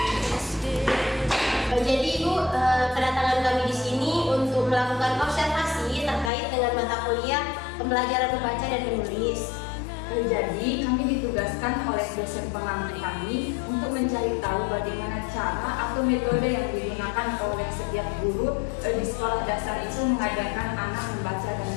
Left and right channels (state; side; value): drops out; right; at 6.3 s